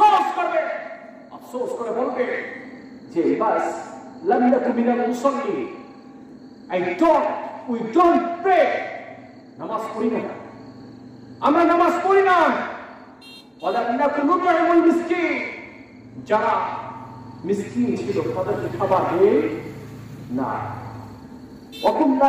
করবে, আফসোস করে বলবে যে বাস লাম নাকু মিনাল মুসাল্লি, we don't pray, নামাজ পড়ি না, আমরা নামাজ পড়ি না। ওয়ালাম নাকু নুতইমুল মিসকিন, যারা মিসকিন ছিল তাদেরকে খাবার দেই না। ওয়া কুননা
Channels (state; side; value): identical; both; correlation 1.00